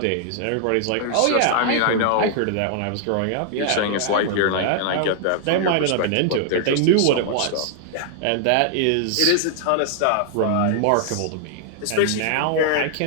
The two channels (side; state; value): both; different; correlation 0.00